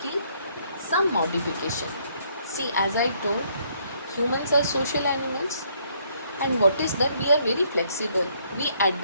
some modification. See, as I told, humans are social animals, and what is that? We are very flexible. We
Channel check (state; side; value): inverted; both; correlation -0.68